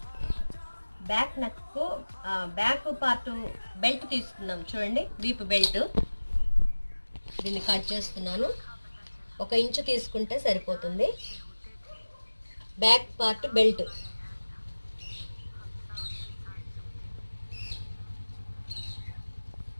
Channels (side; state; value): both; inverted; correlation -1.00